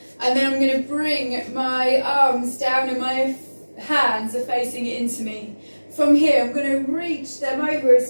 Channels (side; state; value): both; inverted; correlation -1.00